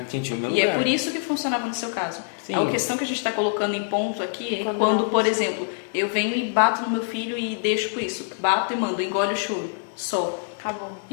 entendi o meu E lugar. é por isso que funcionava no seu caso. Sim. A questão que a gente está colocando em ponto aqui é quando, por exemplo, eu venho e bato no meu filho e deixo por isso. Bato e mando, engole o choro. Só. Acabou.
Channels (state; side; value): silent; right; digital silence